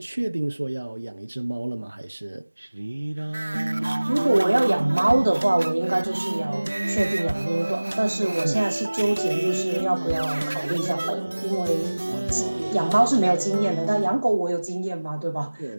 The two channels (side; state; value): both; inverted; correlation -1.00